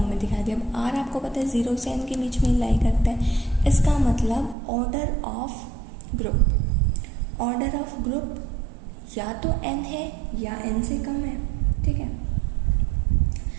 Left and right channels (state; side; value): drops out; left; at 4.5 s